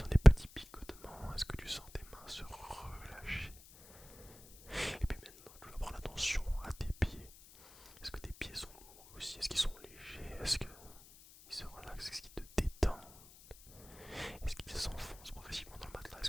des petits picotements? Est-ce que tu sens tes mains se relâcher?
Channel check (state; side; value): noise; left; hiss, 21 dB below the sound